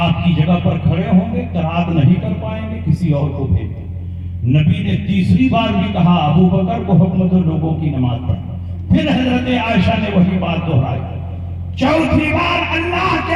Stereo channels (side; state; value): both; identical; correlation 1.00